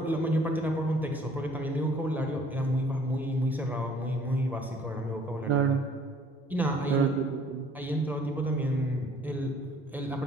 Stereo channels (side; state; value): both; normal; correlation 0.57